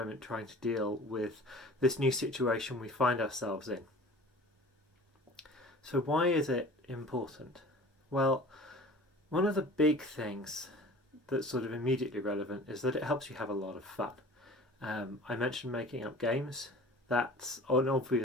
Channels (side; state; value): both; normal; correlation 0.43